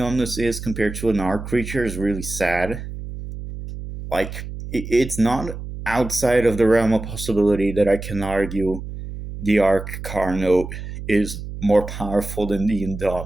is compared to an arc creature is really sad. Like it's not outside of the realm of possibility that I can argue the arc Carno is more powerful than the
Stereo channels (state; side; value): noise; right; hum, 9 dB below the sound